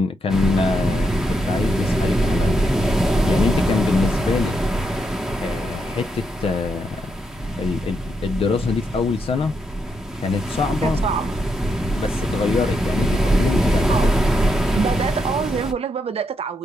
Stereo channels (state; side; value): normal; both; correlation 0.81